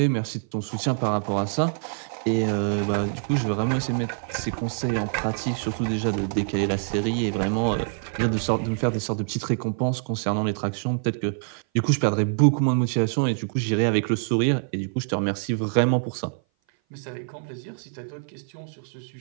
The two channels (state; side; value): silent; left; 57 dB below the other